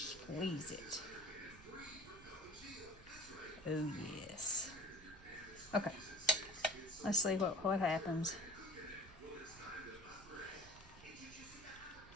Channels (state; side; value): noise; right; rumble, 20 dB below the sound